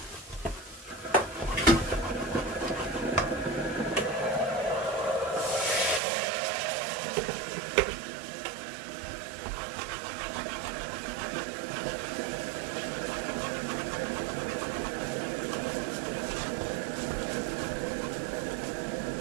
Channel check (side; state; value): left; drops out; at 6.0 s